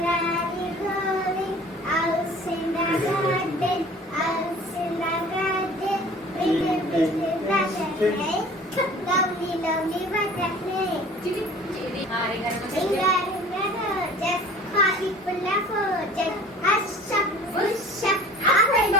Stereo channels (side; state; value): both; normal; correlation 0.46